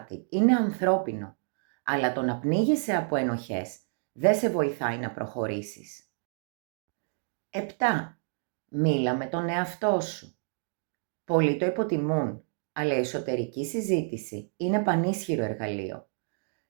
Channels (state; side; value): silent; left; 59 dB below the other